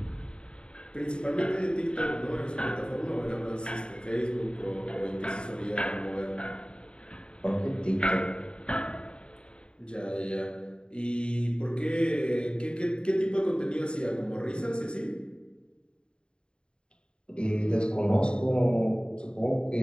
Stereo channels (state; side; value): late; right; 0.052 ms